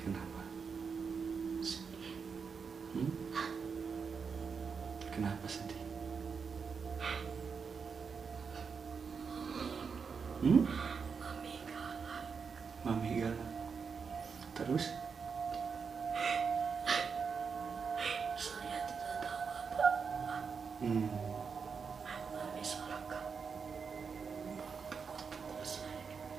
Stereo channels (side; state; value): left; quieter; 5.8 dB